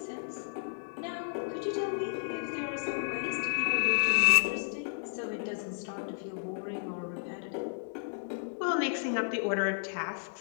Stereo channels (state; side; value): silent; right; digital silence